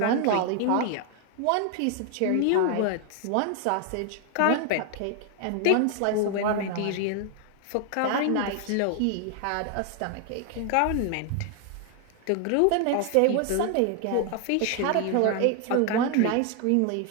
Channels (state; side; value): different; both; correlation 0.00